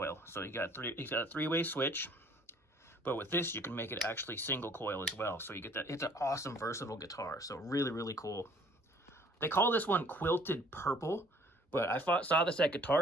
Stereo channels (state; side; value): normal; both; correlation 0.57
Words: So you got a three-way switch. But with this, you can make it actually single coil as well. So you get that. It's an awesome, versatile guitar. So really, really cool. They call this one Quilted Purple, but I saw this at